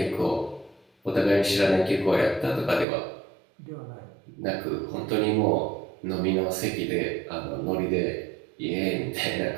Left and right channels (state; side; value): drops out; left; at 2.9 s